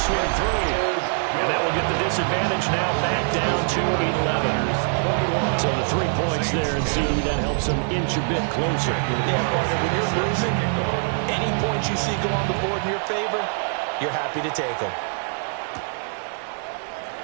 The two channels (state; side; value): silent; left; 59 dB below the other